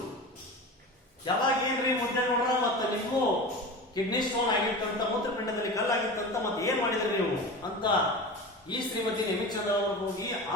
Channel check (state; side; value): normal; both; correlation 0.30